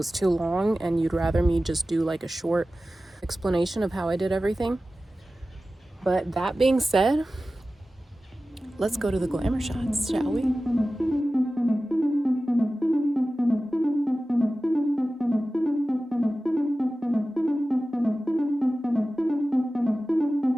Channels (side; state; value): both; normal; correlation 0.95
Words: too long and you'd rather me just do like a short explanation of how I did everything. But that being said, let's go to the glamour shots, shall we?